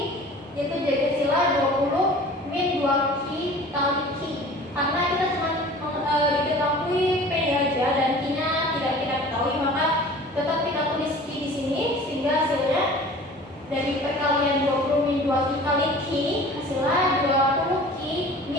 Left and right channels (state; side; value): normal; both; correlation 0.44